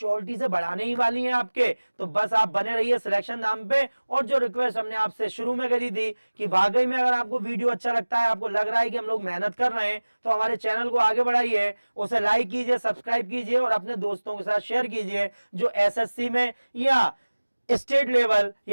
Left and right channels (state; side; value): inverted; both; correlation -1.00